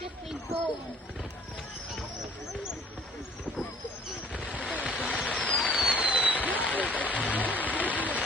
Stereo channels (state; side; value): normal; both; correlation 0.56